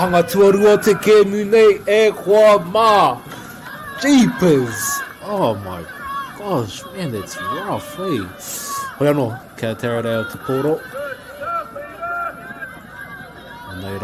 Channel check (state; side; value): identical; both; correlation 1.00